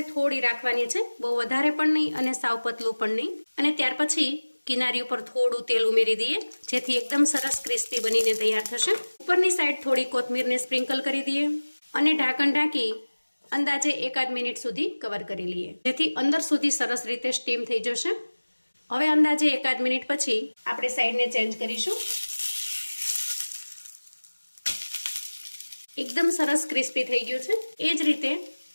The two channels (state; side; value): inverted; both; correlation -1.00